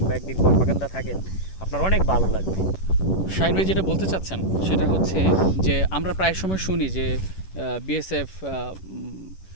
একদিন কর্মাকান্দা থাকেন, আপনার অনেক ভালো লাগবে। শাহিন ভাই যেটা বলতে চাচ্ছেন সেটা হচ্ছে যে আমরা প্রায় সময় শুনি যে বিএসএফ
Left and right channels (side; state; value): right; late; 11 ms